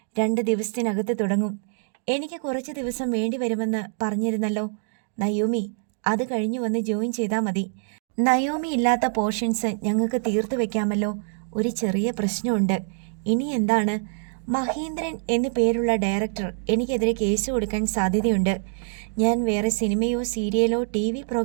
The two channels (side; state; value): left; silent; digital silence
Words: 2 ദിവസത്തിനകത്ത് തുടങ്ങും. എനിക്ക് കുറച്ച് ദിവസം വേണ്ടി വരുമെന്ന് പറഞ്ഞിരുന്നല്ലോ. നയോമി, അത് കഴിഞ്ഞു വന്ന് ജോയിൻ ചെയ്താൽ മതി. നയോമി ഇല്ലാത്ത പോർഷൻസ് ഞങ്ങൾക്ക് തീർത്തു വെക്കാമല്ലോ. ഒരു ചെറിയ പ്രശ്നമുണ്ട്. ഇനി എന്താണ്? മഹേന്ദ്രൻ എന്നു പേരുള്ള ഡയറക്ടർ എനിക്കെതിരെ കേസ് കൊടുക്കാൻ സാധ്യതയുണ്ട്. ഞാൻ വേറെ സിനിമയോ സീരിയലോ TV